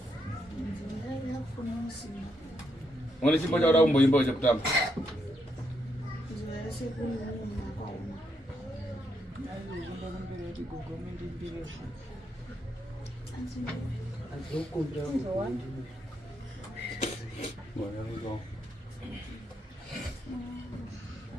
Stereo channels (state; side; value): normal; both; correlation 0.78